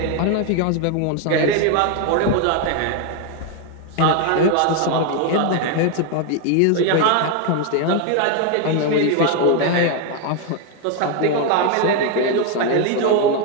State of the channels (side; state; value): both; different; correlation 0.01